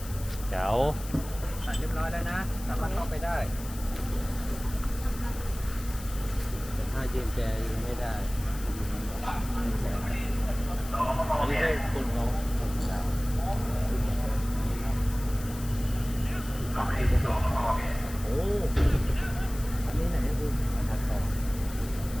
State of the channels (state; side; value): noise; left; hiss, 15 dB below the sound